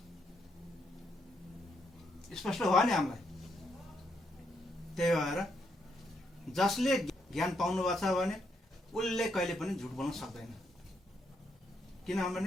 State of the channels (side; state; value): both; normal; correlation 0.77